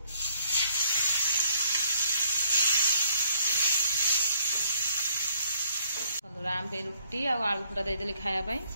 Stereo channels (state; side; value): inverted; both; correlation -0.66